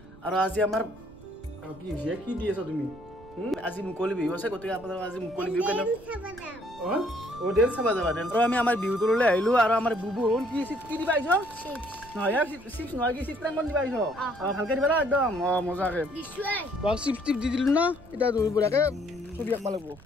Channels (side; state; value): right; noise; rumble, 23 dB below the sound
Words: আৰু আজি আমাৰ কি হৈছে কি দি আছা তুমি আজি মুকলি বিহু আছে গতিকে আপোনালোক আজি মুকলি বিহু কেনে অ ডেন্স চাবা যাবা ডেন্স আৰু আমি আমাৰ বিহু তললৈ আহিলোঁ আৰু আমাৰ বুবু কি দিবা আহিছ নহয় চিপছ নহয় কি চিত্ৰাংকন দিবা আহিছ ভালকে দিবা না একদম মজাকে চিপছ টিপ দি দিলোঁ না এতিয়া বঢ়িয়াকে ছবি আঁকিব লাগিব